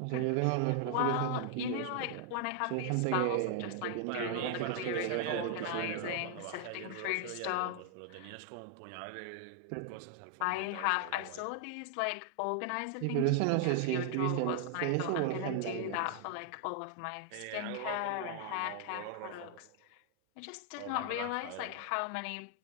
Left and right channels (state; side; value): different; both; correlation 0.00